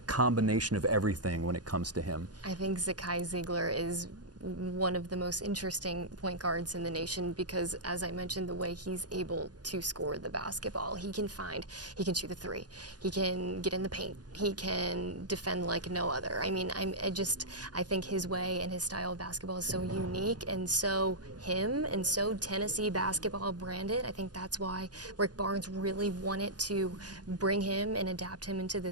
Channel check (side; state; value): left; late; 0.69 ms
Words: combination of everything when it comes to him? I think Zakai Zeigler is one of the most interesting point guards in the nation because, as I mentioned, the way he's able to score the basketball, he can shoot the 3, he can get in the paint, he can defend like no other. I mean, I think his way and his style of basketball is so unique, and so him and so Tennessee basketball branded. I think that's why Rick Barnes really wanted to bring him and adapt him into